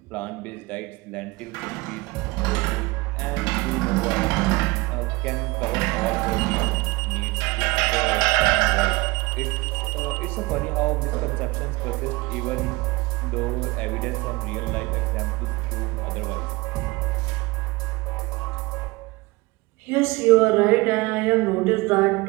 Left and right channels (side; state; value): left; quieter; 23.0 dB